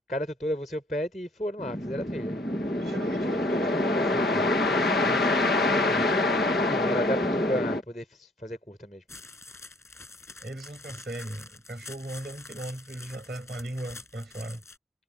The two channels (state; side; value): normal; both; correlation 0.59